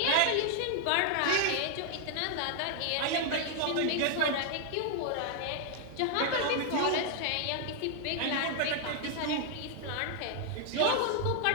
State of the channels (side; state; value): both; different; correlation 0.00